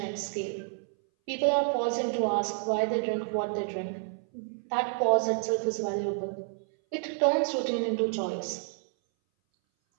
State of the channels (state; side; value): silent; left; 58 dB below the other